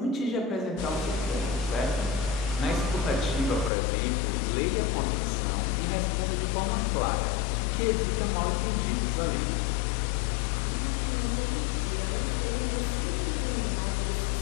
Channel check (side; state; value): right; drops out; at 3.7 s